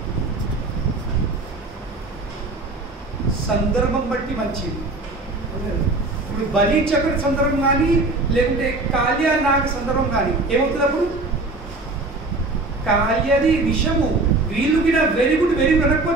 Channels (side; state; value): left; quieter; 3.1 dB